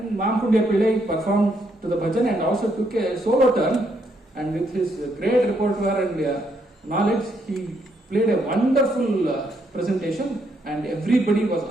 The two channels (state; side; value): normal; both; correlation 0.75